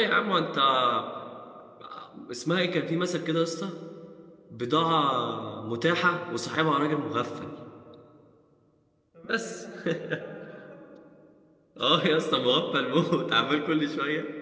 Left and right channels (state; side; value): identical; both; correlation 1.00